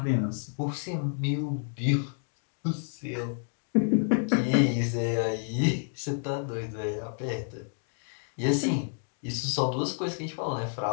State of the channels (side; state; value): right; silent; digital silence